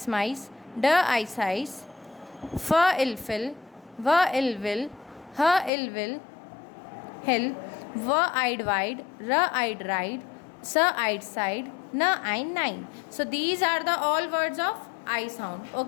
माइस, ड आइस आइस, फ इल फिल, व इल विल, ह इल विल हिल, व आइड वाइड, र आइड राइड, स आइड साइड, न आइन nine. So these are the all words of I sound.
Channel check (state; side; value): drops out; right; at 5.7 s